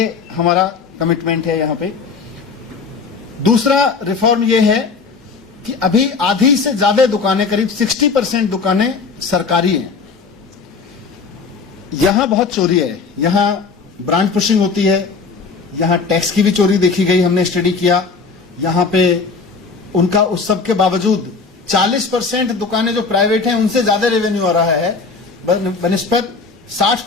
हमारा कमिटमेंट है यहां पे। दूसरा रिफॉर्म ये है कि अभी आधी से ज्यादा दुकानें, करीब 60% दुकानें सरकारी हैं। यहां बहुत चोरी है, यहां ब्रांड पुशिंग होती है, यहां टैक्स की भी चोरी देखी गई, हमने स्टडी किया। यहां पे उनका उस सब के बावजूद 40% दुकानें जो प्राइवेट हैं उनसे ज्यादा रेवेन्यू आ रहा है बनिस्बत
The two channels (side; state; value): right; quieter; 4.8 dB